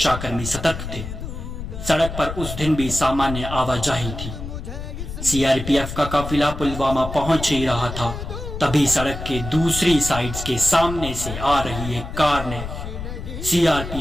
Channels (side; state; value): left; noise; rumble, 8 dB below the sound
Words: सतर्क थे। सड़क पर उस दिन भी सामान्य आवाजाही थी। सीआरपीएफ का काफिला पुलवामा पहुंच ही रहा था, तभी सड़क के दूसरी साइड के सामने से आ रही एक कार ने